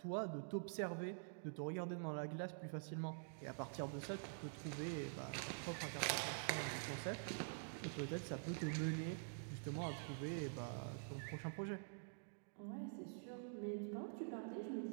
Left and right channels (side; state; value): left; silent; digital silence